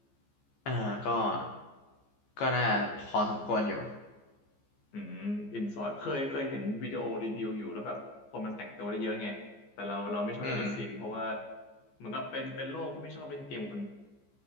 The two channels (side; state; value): right; late; 14 ms